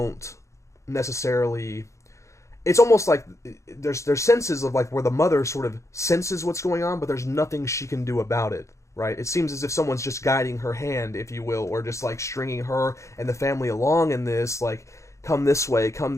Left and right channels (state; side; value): late; right; 0.14 ms